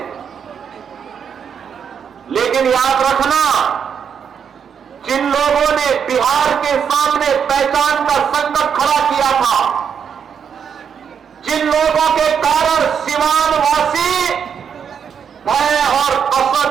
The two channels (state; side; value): quieter; left; 7.4 dB